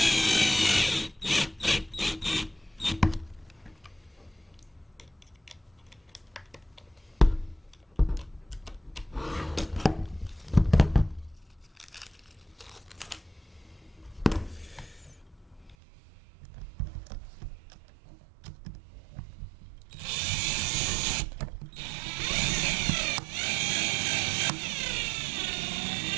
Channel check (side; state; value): left; drops out; at 15.8 s